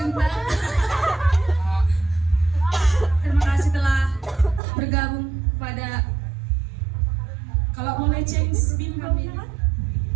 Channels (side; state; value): left; drops out; at 4.6 s